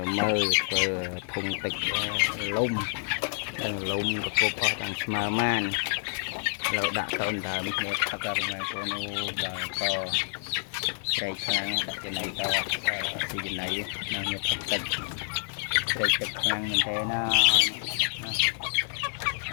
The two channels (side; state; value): right; silent; digital silence